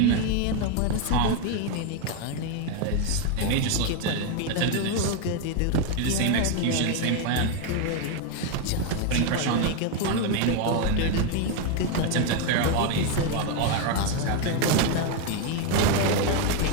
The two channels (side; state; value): both; different; correlation 0.02